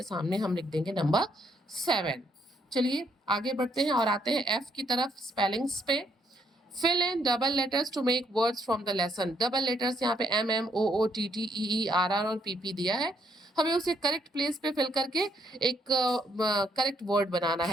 सामने हम लिख देंगे नंबर 7। चलिए आगे बढ़ते हैं और आते हैं एफ की तरफ, स्पेलिंग्स पे। Fill in double letters to make words from the lesson. Double letters यहाँ पे M M O O T T E E R R और पी पी दिया है, हमें उसे करेक्ट प्लेस पे फिल करके एक करेक्ट वर्ड बनाना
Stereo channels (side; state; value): both; normal; correlation 0.73